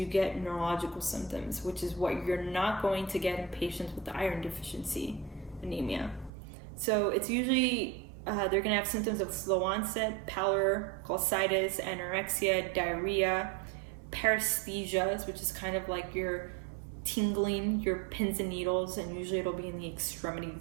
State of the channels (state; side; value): drops out; left; at 6.3 s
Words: get neurological symptoms, which is what you're not going to get in patients with the iron deficiency anemia. So it's usually, they're going to have symptoms of slow onset, pallor, cholestitis, anorexia, diarrhea, paresthesias, which is kind of like you're tingling your pins and needles, and usually it'll be in the